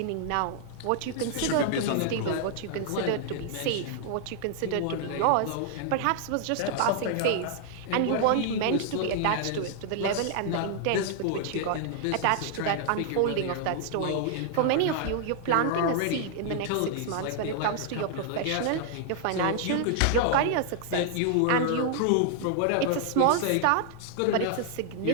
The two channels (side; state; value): both; different; correlation -0.01